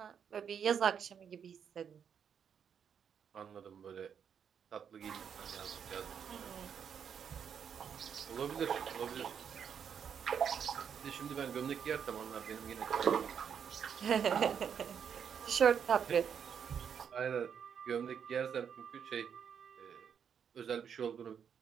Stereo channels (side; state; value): left; quieter; 7.6 dB